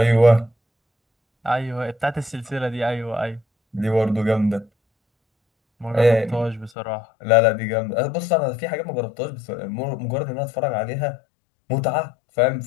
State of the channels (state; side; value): drops out; right; at 6.7 s